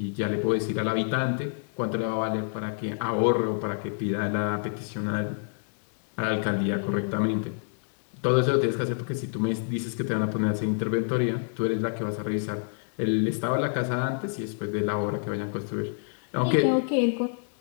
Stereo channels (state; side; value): silent; right; digital silence